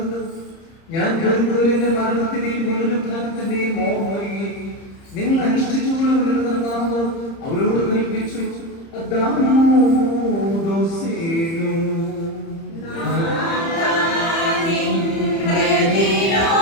ഞാൻ കരുതലിന്റെ മരണത്തിന്റെയും പുനരുത്ഥാനത്തിന്റെയും ഓർമ്മയെ നിങ്ങൾ അനുഷ്ഠിച്ചുകൊള്ളുമെന്ന് കർത്താവ് അവരോട് കൽപ്പിച്ചു.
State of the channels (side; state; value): right; late; 30 ms